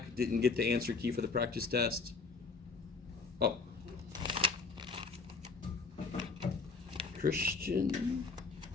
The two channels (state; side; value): quieter; right; 4.4 dB